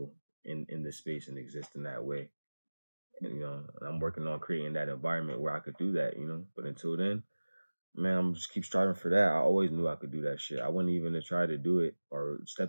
in this space and exist in that way. And, you know, I'm working on creating that environment where I could do that, you know. But until then, Man, I'm just keep striving for that. I always knew I could do that shit. I wouldn't even have tried to do it or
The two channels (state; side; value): inverted; both; correlation -1.00